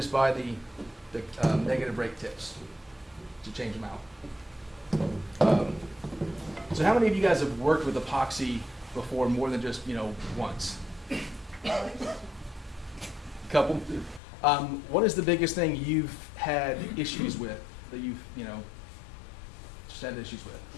buy the negative rake tips to change them out. So how many of you guys have worked with epoxy before more than just, once? A couple? What is the biggest thing you've had issues with that you've, just had issues with?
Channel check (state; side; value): drops out; right; at 14.2 s